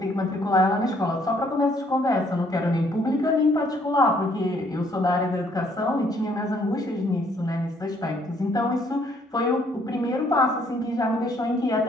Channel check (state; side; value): normal; both; correlation 0.65